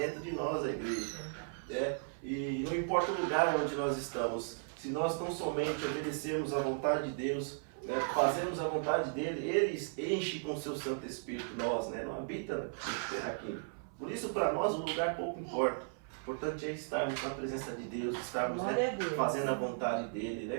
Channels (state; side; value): silent; left; 54 dB below the other